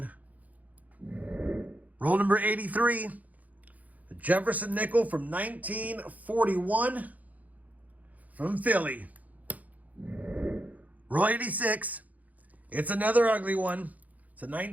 Roll number 83. A Jefferson nickel from 1941 from Philly. Roll 86. It's another ugly one. It's a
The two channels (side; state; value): left; late; 0.077 ms